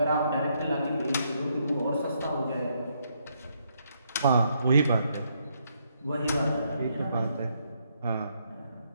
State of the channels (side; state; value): both; inverted; correlation -0.75